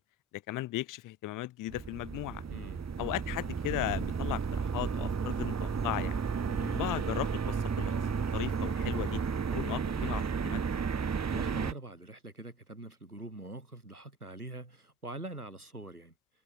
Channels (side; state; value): both; normal; correlation 0.43